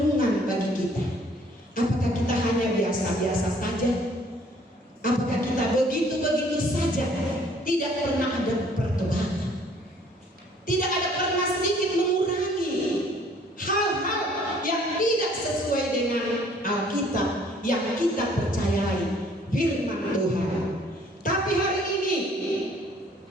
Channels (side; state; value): both; normal; correlation 0.58